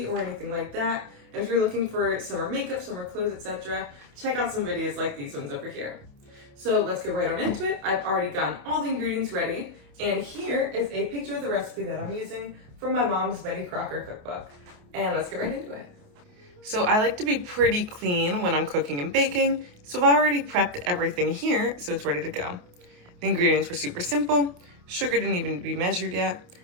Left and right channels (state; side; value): late; left; 28 ms